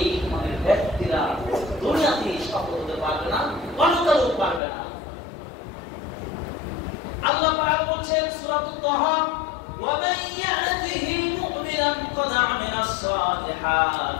ধরনের ব্যক্তিরা দুনিয়াতে সফল হতে পারবে না, পরকালেও পারবে না। আল্লাহ পাক বলছেন সূরাতুত তাহা, ومن يأته مؤمنا قد عمل الصالحات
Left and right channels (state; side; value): drops out; right; at 4.6 s